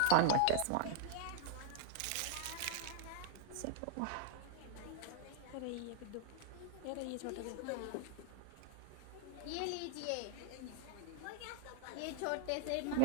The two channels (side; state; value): both; different; correlation 0.00